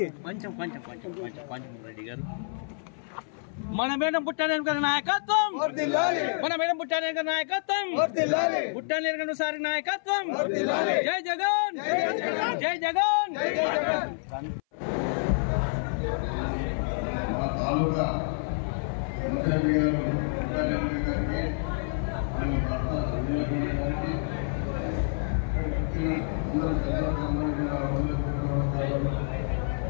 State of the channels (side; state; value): right; silent; 58 dB below the other